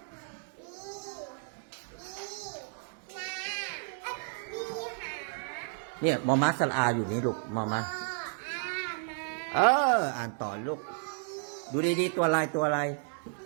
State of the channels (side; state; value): left; silent; 56 dB below the other